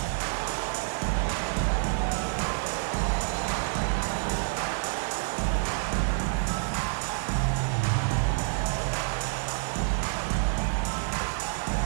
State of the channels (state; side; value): silent; left; digital silence